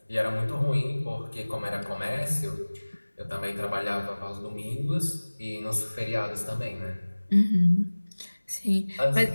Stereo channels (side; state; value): both; inverted; correlation -1.00